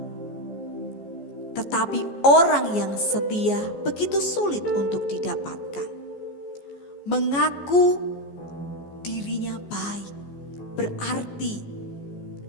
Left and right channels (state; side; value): late; right; 14 ms